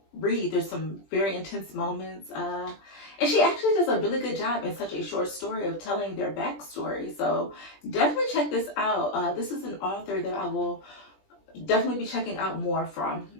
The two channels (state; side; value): late; right; 20 ms